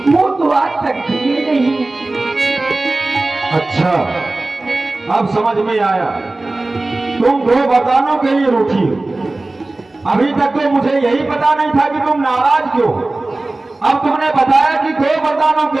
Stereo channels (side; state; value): left; quieter; 3.0 dB